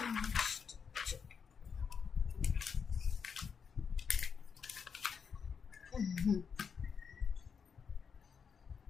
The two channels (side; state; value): right; quieter; 6.4 dB